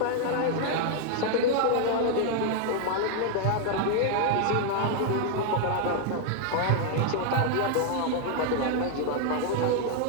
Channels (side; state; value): both; different; correlation 0.00